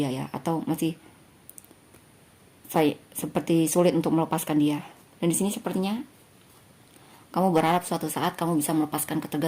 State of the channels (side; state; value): both; identical; correlation 1.00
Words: ya, atau masih seperti sulit untuk melepaskan dia. Dan di sini sepertinya Kamu berharap suatu saat kamu bisa melepaskan